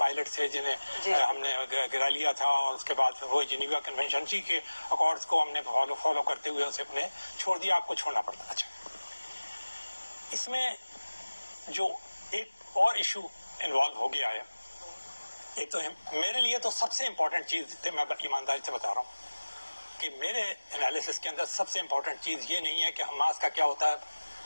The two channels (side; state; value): both; inverted; correlation -1.00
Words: تھے جنہیں ہم نے گرا لیا تھا اور اس کے بعد وہ جنیوا کنونشن جی کے اکارڈز کو ہم نے فالو کرتے ہوئے اسے اپنے چھوڑ دیا. آپ کو چھوڑنا پڑتا. اچھا اس میں جو ایک اور ایشو انوالو ہو گیا ہے, ایک تو میرے لیے تو سب سے امپورٹنٹ چیز تھی, میں ایمانداری سے بتا رہا ہوں کہ میرے انالیسس کے اندر سب سے امپورٹنٹ چیز یہ نہیں ہے کہ حماس کا کیا ہوتا ہے,